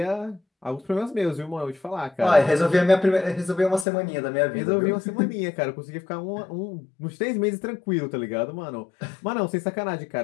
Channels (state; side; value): drops out; right; at 3.9 s